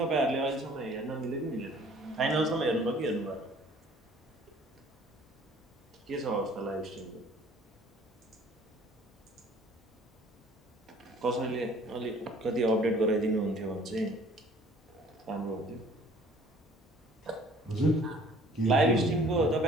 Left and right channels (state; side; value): normal; both; correlation 0.53